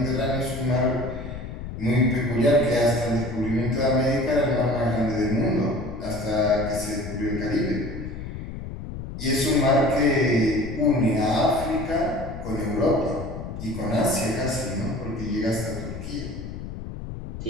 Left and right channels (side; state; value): left; noise; rumble, 9 dB below the sound